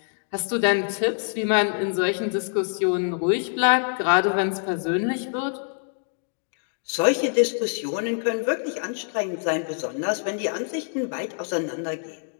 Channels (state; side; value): silent; right; digital silence